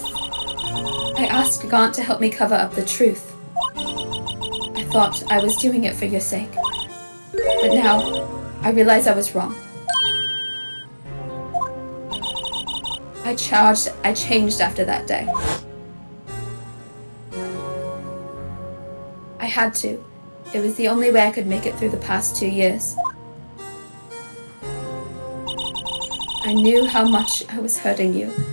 I asked Gaunt to help me cover up the truth. I thought I was doing it for your sake. But now, I realize I was wrong. I changed after that day. I had to. It was the only way I could make it through the past 2 years. I knew how much I was hurting you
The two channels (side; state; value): both; inverted; correlation -1.00